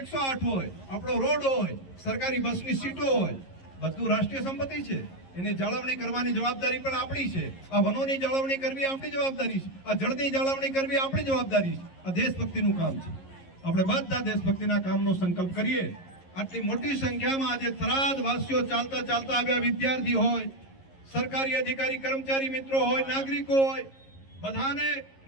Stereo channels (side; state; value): right; late; 11 ms